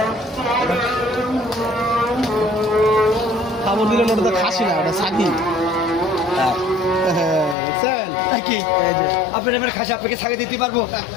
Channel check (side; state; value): right; drops out; at 7.6 s